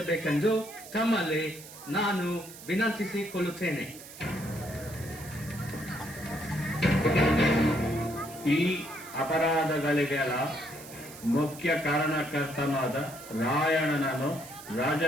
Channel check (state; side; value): noise; right; hiss, 16 dB below the sound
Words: ತಮ್ಮಲ್ಲಿ ನಾನು ವಿನಂತಿಸಿಕೊಳ್ಳುತ್ತೇನೆ. ಈ ಅಪರಾಧಗಳಿಗೆಲ್ಲ ಮುಖ್ಯ ಕಾರಣಕರ್ತನಾದ ರಾಯಣ್ಣನನ್ನು